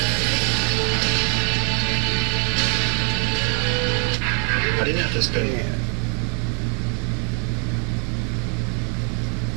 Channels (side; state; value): left; quieter; 38.6 dB